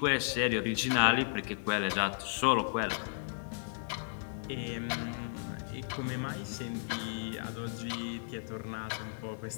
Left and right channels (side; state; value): right; silent; digital silence